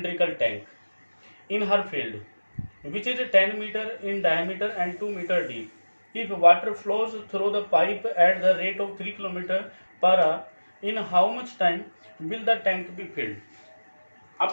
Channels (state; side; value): inverted; both; correlation -1.00